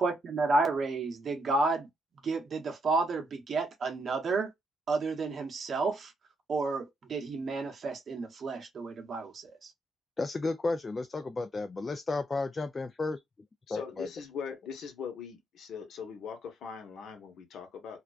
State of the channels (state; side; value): normal; both; correlation 0.77